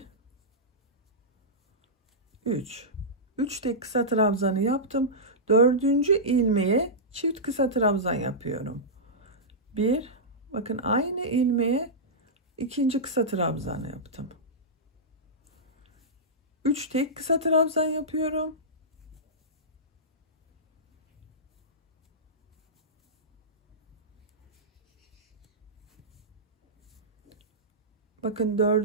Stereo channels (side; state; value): both; normal; correlation -0.14